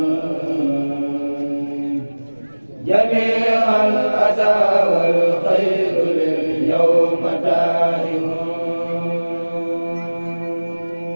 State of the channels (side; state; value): both; inverted; correlation -1.00